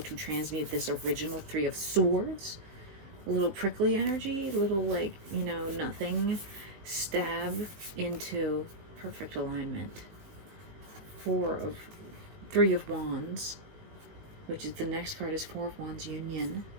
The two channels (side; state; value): left; late; 19 ms